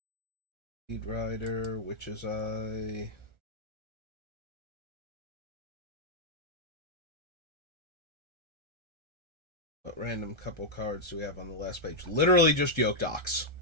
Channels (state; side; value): late; left; 1.4 ms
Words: Speed Rider, Witch's Eye. What random couple cards do we have on the last page? Literally just Yoke Docs.